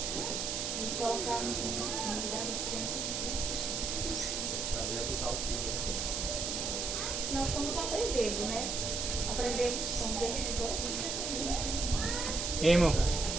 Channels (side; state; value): right; noise; hiss, 1 dB below the sound